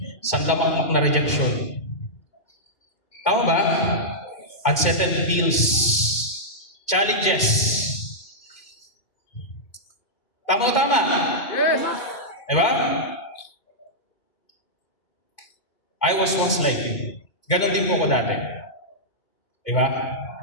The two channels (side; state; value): right; late; 2.1 ms